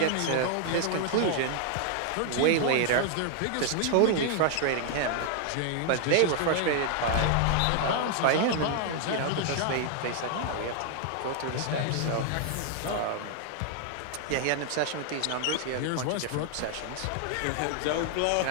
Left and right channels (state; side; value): different; both; correlation 0.00